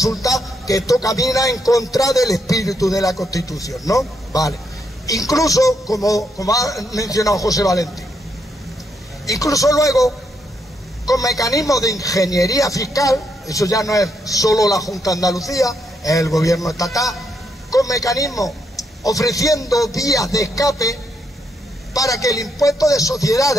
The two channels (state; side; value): normal; both; correlation 0.78